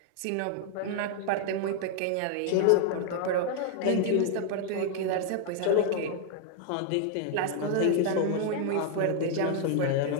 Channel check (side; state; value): both; different; correlation 0.00